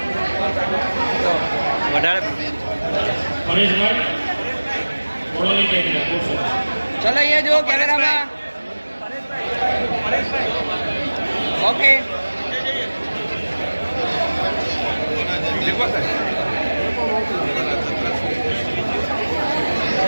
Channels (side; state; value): both; inverted; correlation -1.00